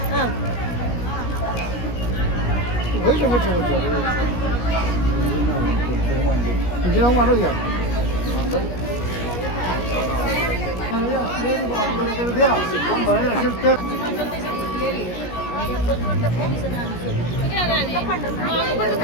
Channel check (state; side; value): late; right; 17 ms